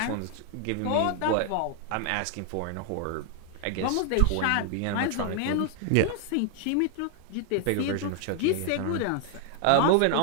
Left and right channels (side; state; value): both; different; correlation 0.00